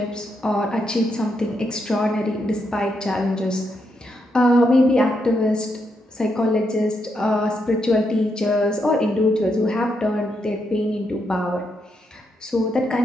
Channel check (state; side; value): normal; both; correlation 0.80